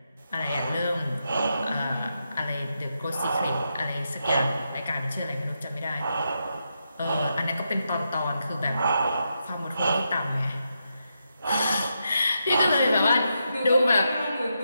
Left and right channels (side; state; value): both; inverted; correlation -0.84